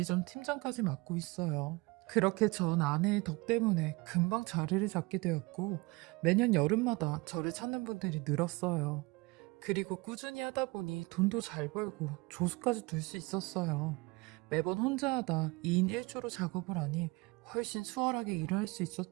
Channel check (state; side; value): quieter; left; 24.5 dB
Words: 팀장까지 맡고 있어요. 그렇게 전 아내의 덕 때문에 금방 자리를 잡게 되었고 매년 여름마다 저를 찾는 분들이 늘었어요. 그리고 꾸준히 하다 보니 돈도 잘 벌고 조수까지 둘 수 있었어요. 매번 혼자 하다 2인 1조로 작업을 하니 훨씬 수월하게 일을 할 수